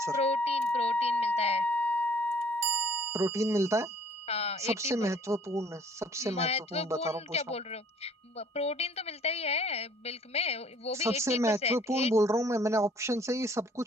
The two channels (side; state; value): both; normal; correlation 0.57